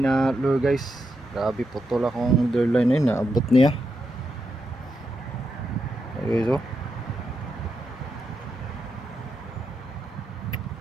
lure guys. Grabe putol akong lure line na naabot niya. Okay so.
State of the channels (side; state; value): both; normal; correlation 0.84